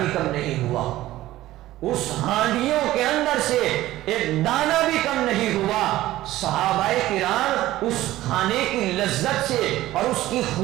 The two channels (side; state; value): left; quieter; 15.6 dB